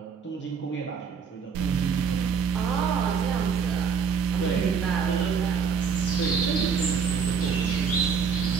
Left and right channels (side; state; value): left; quieter; 6.3 dB